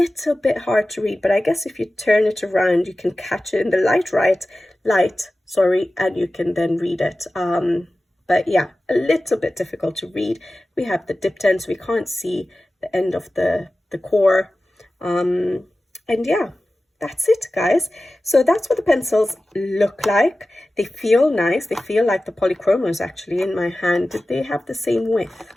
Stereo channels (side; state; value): both; normal; correlation 0.95